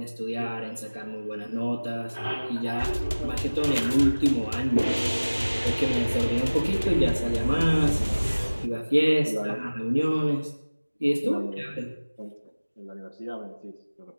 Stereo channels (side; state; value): both; inverted; correlation -1.00